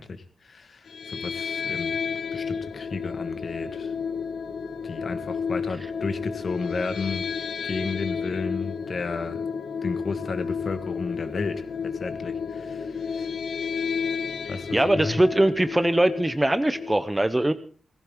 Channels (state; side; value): normal; both; correlation 0.92